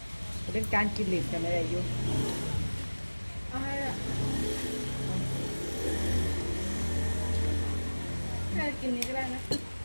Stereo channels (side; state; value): both; inverted; correlation -1.00